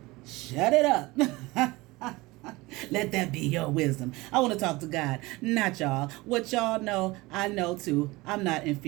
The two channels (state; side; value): quieter; left; 21.6 dB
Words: Shut it up. Let that be your wisdom. I want to talk to God, not y'all. What y'all know, I know too. I'm not